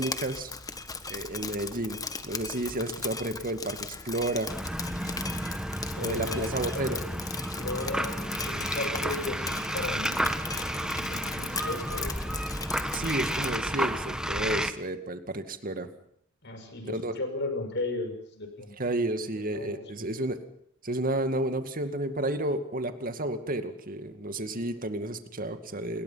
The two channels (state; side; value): normal; both; correlation 0.41